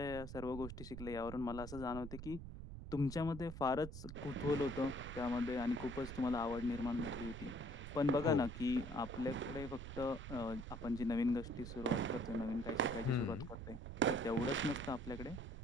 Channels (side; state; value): right; noise; rumble, 9 dB below the sound